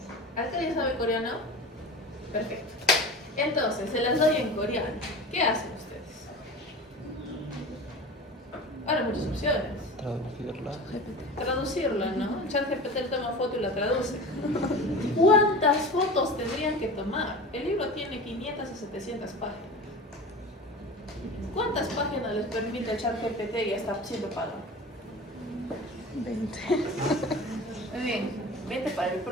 ¿Acá alguien sabe coreano? Perfecto. Entonces, se las doy en coreano. ¿Qué hacen ustedes? Ahora muchas opciones. Traducirla, ¿no? ChatGPT toma foto y la traduce. ¿Cuántas fotos tendrían que tomar? El libro tiene 500 a 700 páginas. ¿Cuántas páginas les permite el ChatGPT y está siendo pagado? 20. Muy bien, 20 para el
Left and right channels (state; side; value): normal; both; correlation 0.34